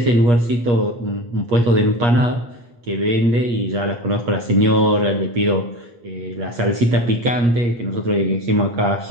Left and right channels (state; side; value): late; left; 8.4 ms